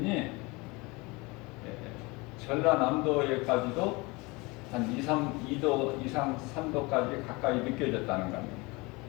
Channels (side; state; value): right; quieter; 25.1 dB